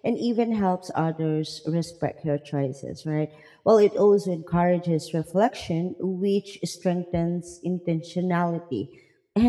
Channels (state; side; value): identical; both; correlation 1.00